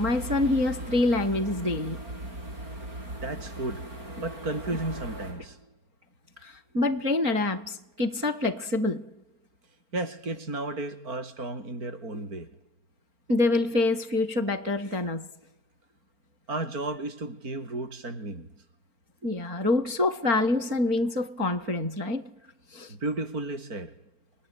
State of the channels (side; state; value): left; late; 4.4 ms